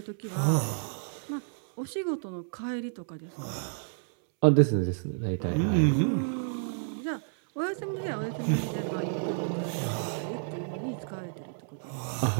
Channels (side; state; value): left; silent; 58 dB below the other